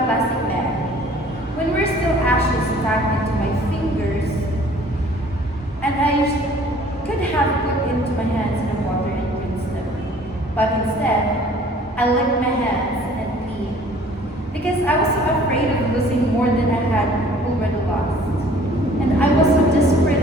plastic bag. When we're still ashes stuck into my fingers, and I could have put into my hands in the water and rinsed them. But instead, I licked my hands and peed. Because I was so afraid of losing more than I had already lost. And I was so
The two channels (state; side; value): normal; both; correlation 0.53